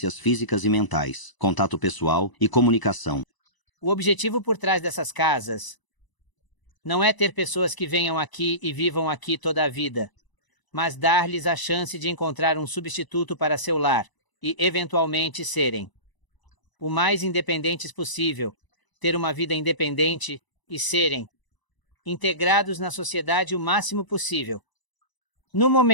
físicas e mentais, contato pessoal e comunicação. O objetivo por trás dessas casas não é ter pessoas que venham aqui e vivam aqui toda a vida, mas dar-lhes a chance de encontrar um substituto para seu lar e, eventualmente, serem o mais independentes possível, ter uma vida independente e serem integrados na sociedade o máximo possível. No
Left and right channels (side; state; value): right; late; 1.0 ms